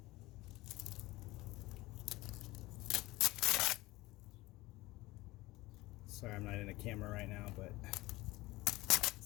Sorry, I'm not in a camera right now, but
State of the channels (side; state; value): right; quieter; 19.8 dB